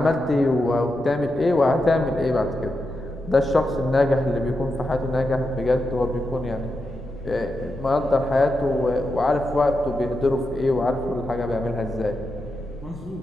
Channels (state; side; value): noise; left; rumble, 16 dB below the sound